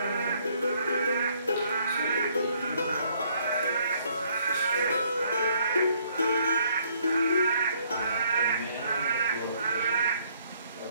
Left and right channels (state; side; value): inverted; both; correlation -0.66